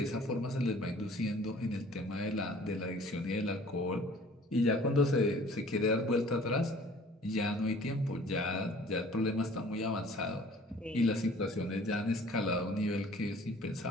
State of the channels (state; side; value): normal; both; correlation 0.51